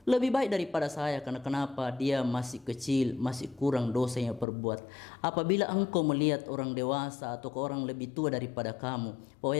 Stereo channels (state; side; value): drops out; right; at 4.5 s